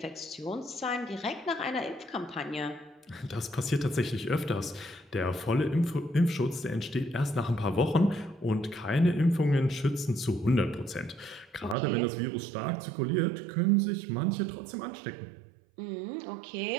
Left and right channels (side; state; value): left; drops out; at 11.8 s